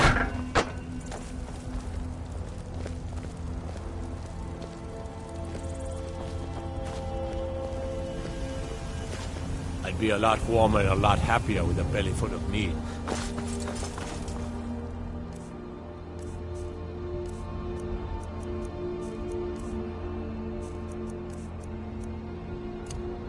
I'd be a lot warmer and a lot happier with a belly full of meat.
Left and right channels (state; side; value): identical; both; correlation 1.00